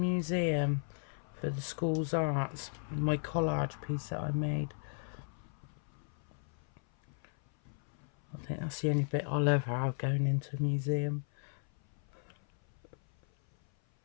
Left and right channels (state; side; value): silent; right; 54 dB below the other